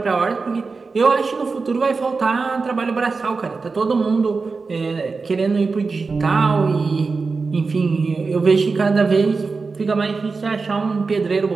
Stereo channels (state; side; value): quieter; left; 4.4 dB